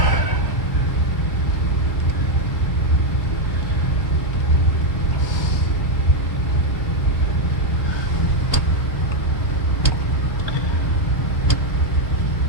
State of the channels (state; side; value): late; right; 1.0 ms